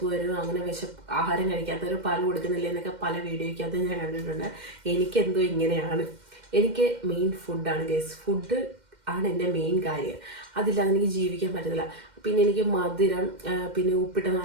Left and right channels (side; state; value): left; late; 2.1 ms